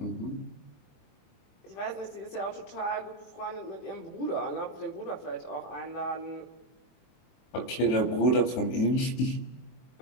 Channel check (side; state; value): right; late; 24 ms